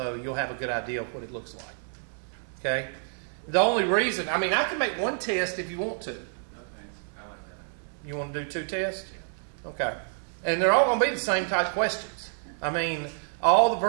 you'll have a good idea of what it looks like. Okay? The only reason, I mean, I can make 1 test if you want to. No thanks. I like that. You want to do 2 tests? Okay. And they're all going to be the same type questions. I mean, all the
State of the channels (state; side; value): silent; left; 59 dB below the other